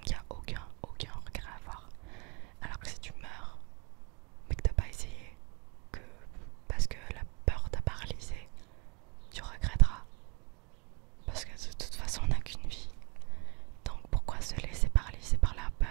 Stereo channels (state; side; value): quieter; left; 30.9 dB